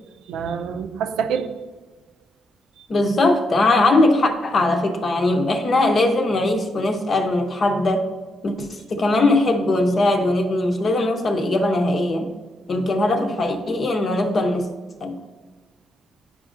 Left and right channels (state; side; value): normal; both; correlation 0.81